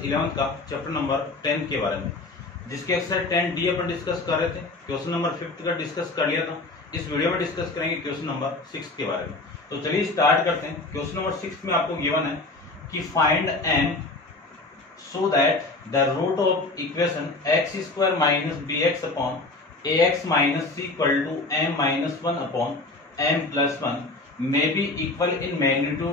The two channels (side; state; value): right; quieter; 3.2 dB